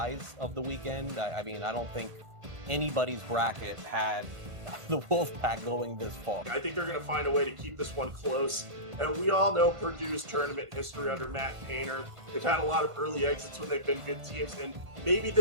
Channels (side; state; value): left; late; 1.8 ms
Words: of the weekend? I mean, I don't think anybody's bracket had the Wolfpack going this far. I think they're going to find a way to keep this one close. And we all know Purdue's tournament history under Matt Painter. They've had a lot of early exits when they've been good teams, and maybe